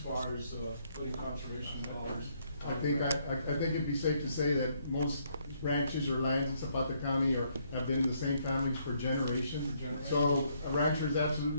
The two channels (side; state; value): both; inverted; correlation -0.71